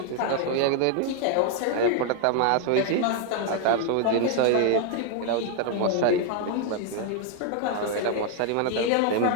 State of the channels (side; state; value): both; different; correlation 0.00